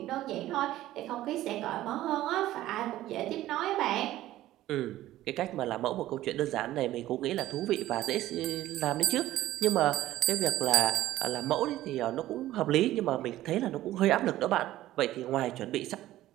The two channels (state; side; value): quieter; left; 14.8 dB